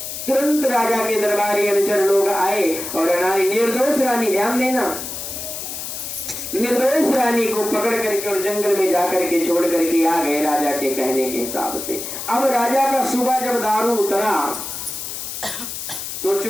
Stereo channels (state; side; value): noise; left; hiss, 7 dB below the sound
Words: तुरंत राजा के दरबारी अनुचर लोग आए और रानी, निर्दोष रानी, ध्यान देना, निर्दोष रानी को पकड़ करके और जंगल में जाकर के छोड़ करके आ गए राजा के कहने के हिसाब से। अब राजा का सुबह जब दारू उतरा,